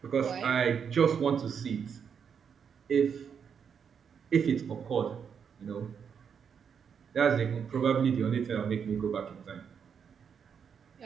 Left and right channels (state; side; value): quieter; left; 7.1 dB